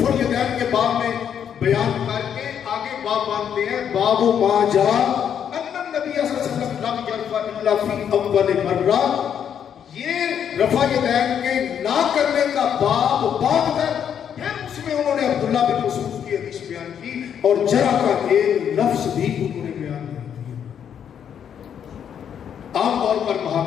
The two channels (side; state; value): right; quieter; 8.6 dB